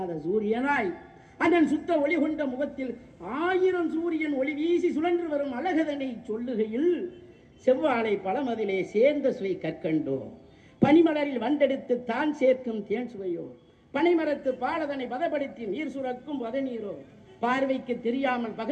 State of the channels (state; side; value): identical; both; correlation 1.00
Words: சூரியனாய் அதன் சுத்த ஒளி கொண்ட முகத்தில் 1000 சூரியன் ஒளி வீசி சுழன்று வரும் அழகதனை சொல்லுகையில் செவ்வாழை பழமதிலே சேர்ந்த சுவை கற்கண்டோ, பனிமலரில் வண்டெடுத்து தான் சேர்க்கும் தேன் சுவையோ, பனைமரத்து பாலதனை பதப்படுத்தி நீர் சுரக்கும் பதநீரோ, பார்வைக்கு தெரியாமல்